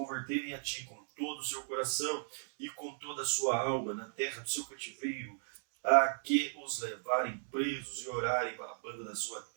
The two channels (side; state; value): left; silent; digital silence